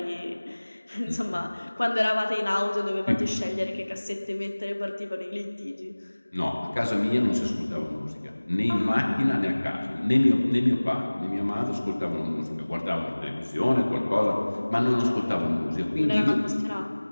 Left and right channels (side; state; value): both; inverted; correlation -1.00